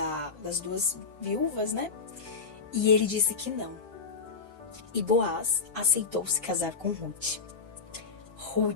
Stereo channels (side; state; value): right; quieter; 5.1 dB